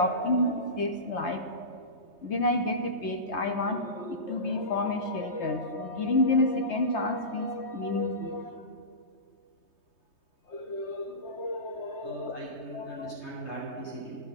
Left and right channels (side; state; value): right; late; 3.2 ms